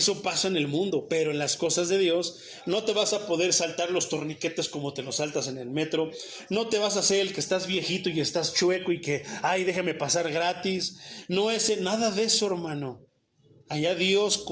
pasa en el mundo, pero en las cosas de Dios no te vas a poder saltar los torniquetes como te los saltas en el metro. No te vas a hacer el que estás viejito y estás chueco y que, ay, déjame pasar gratis. No es nada de eso, hermano. Allá Dios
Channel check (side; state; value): both; identical; correlation 1.00